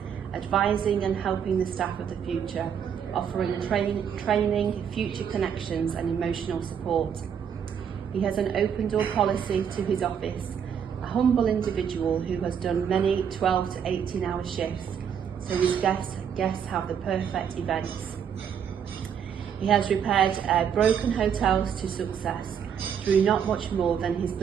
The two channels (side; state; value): left; quieter; 7.9 dB